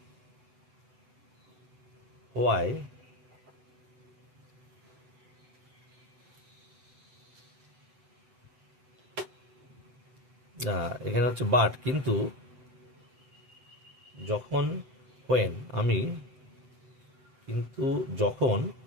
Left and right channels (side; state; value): left; late; 7.9 ms